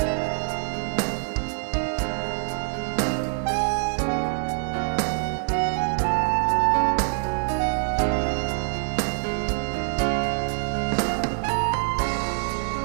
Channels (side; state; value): left; silent; digital silence